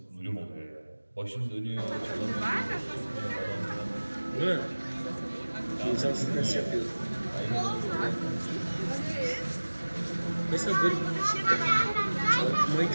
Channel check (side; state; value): both; inverted; correlation -1.00